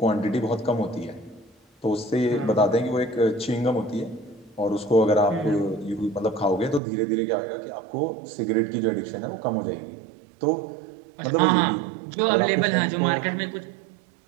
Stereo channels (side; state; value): left; drops out; at 6.8 s